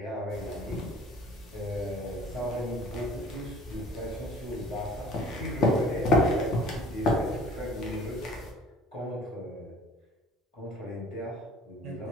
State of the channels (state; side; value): normal; both; correlation 0.49